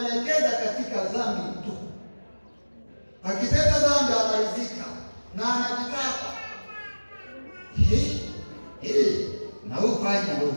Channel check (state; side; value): inverted; both; correlation -1.00